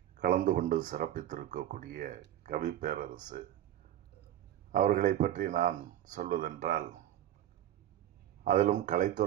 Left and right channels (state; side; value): quieter; left; 12.2 dB